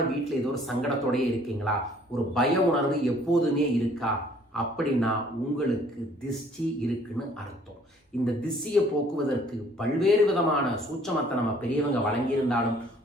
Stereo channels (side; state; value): both; normal; correlation 0.58